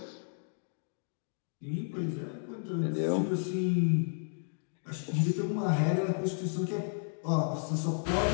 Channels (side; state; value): right; silent; digital silence